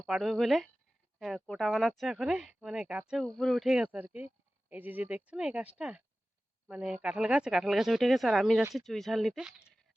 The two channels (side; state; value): both; normal; correlation 0.96